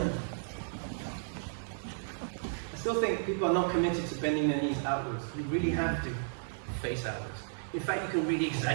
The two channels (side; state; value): left; silent; 55 dB below the other